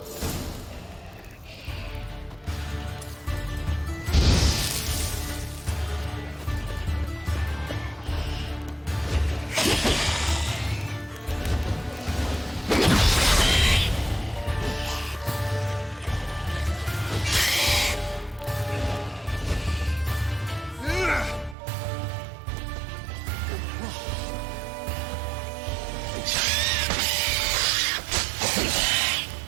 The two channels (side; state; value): left; drops out; at 21.6 s